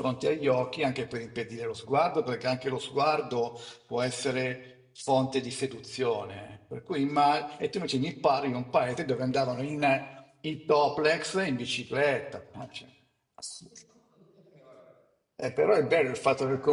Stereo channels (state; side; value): identical; both; correlation 1.00